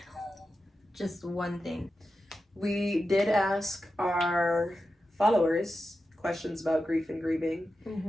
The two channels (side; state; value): both; normal; correlation 0.91